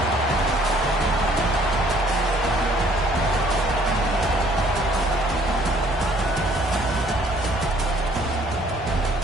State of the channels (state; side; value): normal; both; correlation 0.60